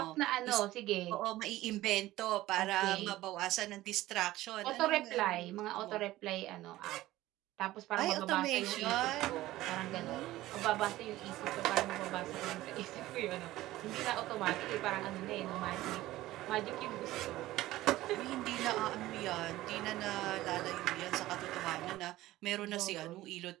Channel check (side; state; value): left; quieter; 16.4 dB